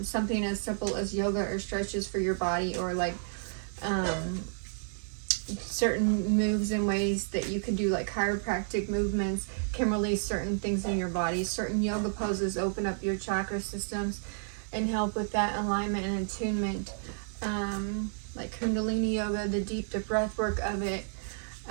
Something as simple as yoga or stretches for your body, or like certain moves and ways that you can do, like chiropractic movements can release certain things in your body. Certain yoga poses open up your chakra systems and help with that alignment and attunement. Like Kundalini yoga, the breath work of it.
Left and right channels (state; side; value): silent; left; digital silence